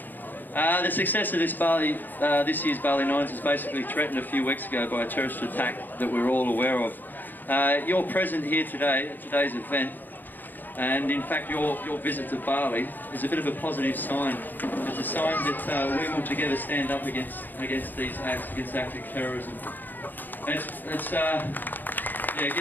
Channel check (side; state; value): right; late; 0.089 ms